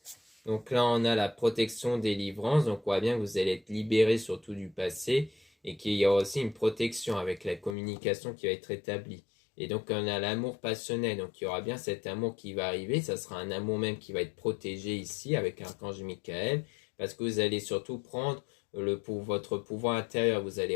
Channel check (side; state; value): right; drops out; at 7.8 s